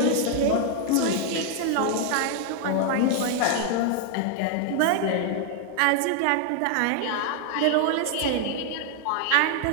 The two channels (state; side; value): different; both; correlation 0.00